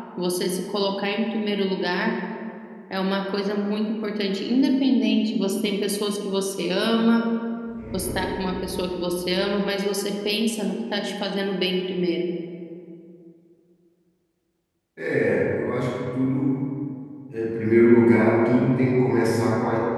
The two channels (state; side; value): identical; both; correlation 1.00